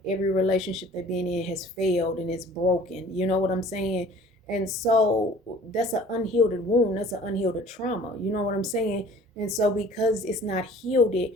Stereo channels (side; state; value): both; normal; correlation 0.49